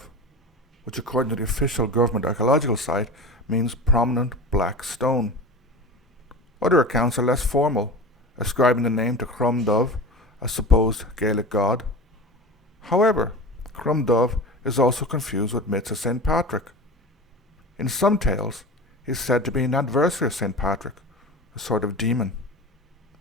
which according to the official government archaeological site means prominent black stone. Other accounts are less formal, ascribing the name to Crom Dubh, a supposed Gaelic god. However, Crom Dubh is also confused with myths of St. Patrick. In some tales, he is said to be an adversary of St. Patrick, a sort of demon.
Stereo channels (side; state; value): both; normal; correlation 0.31